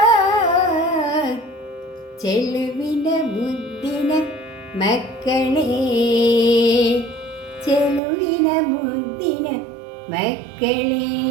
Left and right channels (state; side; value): drops out; left; at 8.0 s